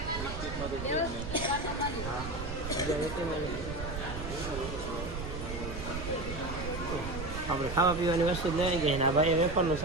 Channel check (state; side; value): noise; right; rumble, 8 dB below the sound